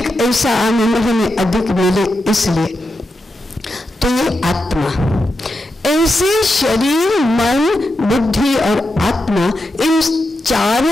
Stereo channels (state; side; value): normal; both; correlation 0.87